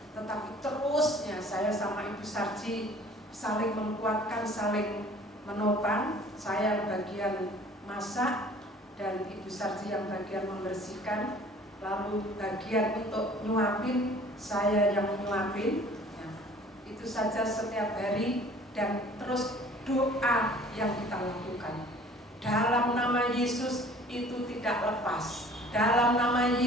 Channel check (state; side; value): normal; both; correlation 0.50